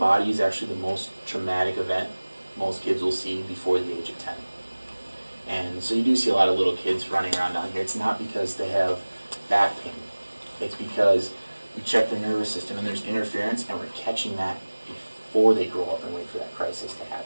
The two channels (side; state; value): both; inverted; correlation -1.00